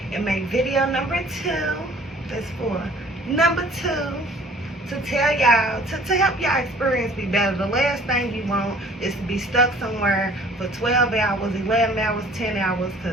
and make video number 2. That's for number 2, to tell y'all, to help y'all experience be better. The last thing you want is to be stuck somewhere for 12 hours, 11 hours, 10 hours,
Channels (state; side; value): normal; both; correlation 0.52